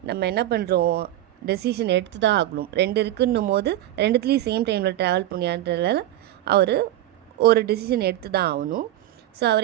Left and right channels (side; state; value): left; quieter; 14.0 dB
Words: நம்ம என்ன பண்ணுறோம், டெசிஷன் எடுத்து தான் ஆகணும். ரெண்டு இருக்குன்னும் போது ரெண்டுத்துலேயும் சேம் டைமில் ட்ராவல் பண்ணியான்றதால அவர் ஒரு டெசிஷன் எடுத்து தான் ஆகணும். ஸோ